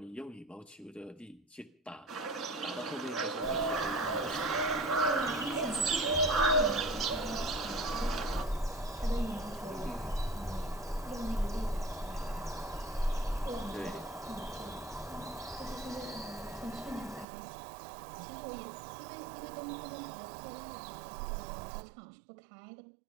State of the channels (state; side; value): drops out; left; at 17.2 s